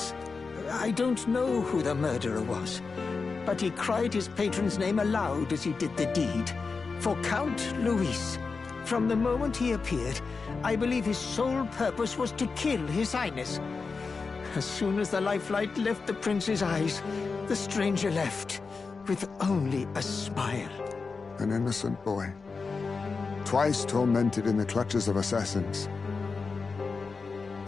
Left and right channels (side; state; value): right; quieter; 4.6 dB